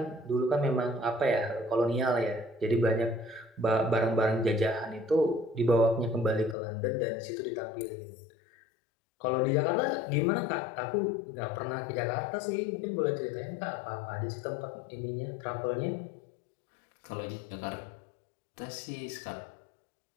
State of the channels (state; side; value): drops out; right; at 6.6 s